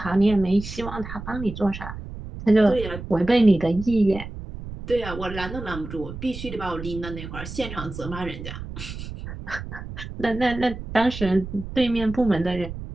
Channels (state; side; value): noise; right; rumble, 10 dB below the sound